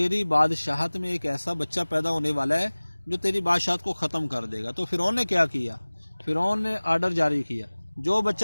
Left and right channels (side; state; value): both; inverted; correlation -1.00